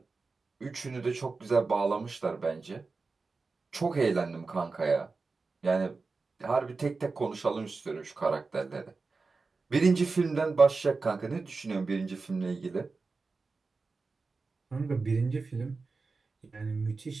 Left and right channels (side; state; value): left; quieter; 4.1 dB